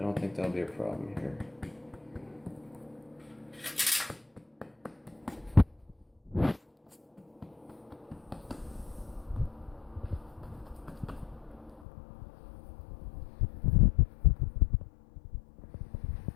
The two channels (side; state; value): right; drops out; at 11.9 s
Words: don't think that'll be a problem here.